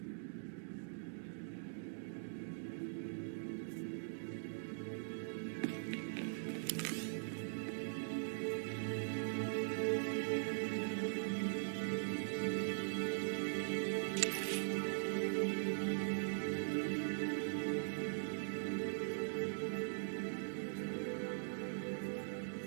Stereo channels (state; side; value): silent; left; digital silence